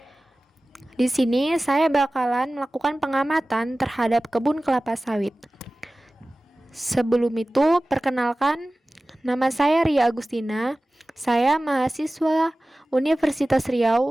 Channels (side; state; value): both; normal; correlation 0.97